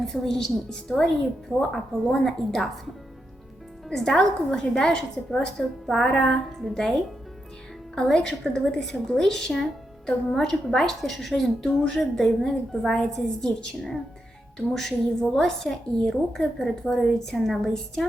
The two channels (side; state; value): both; normal; correlation 0.85